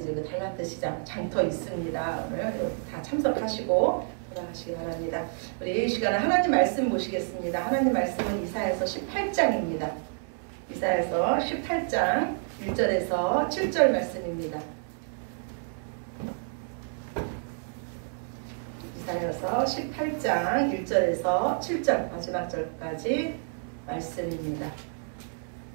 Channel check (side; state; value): left; silent; 59 dB below the other